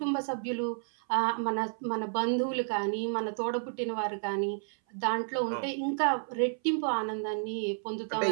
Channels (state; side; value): silent; left; 57 dB below the other